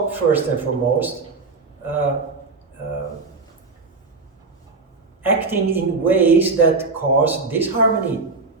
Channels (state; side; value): quieter; left; 4.0 dB